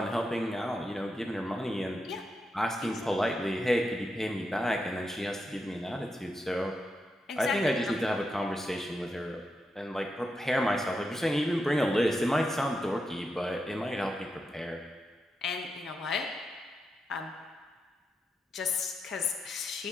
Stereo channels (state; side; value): normal; both; correlation 0.86